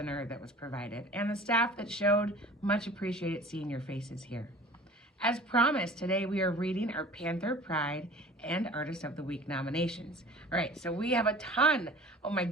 that was provided, and the staff that showed. Much appreciated seeing your faces here. As promised, today we are reading our Panther Pride and Artist of the Week nominations. All right, so we have a ton, oh my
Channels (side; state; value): both; normal; correlation 0.44